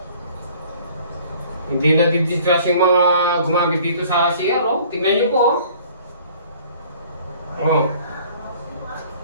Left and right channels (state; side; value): inverted; both; correlation -0.53